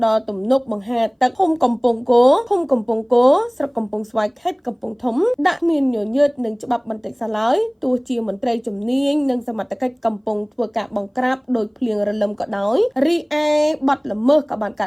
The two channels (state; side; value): identical; both; correlation 1.00